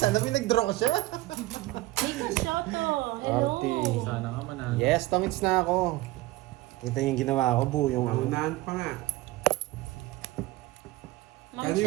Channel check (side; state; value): left; quieter; 18.7 dB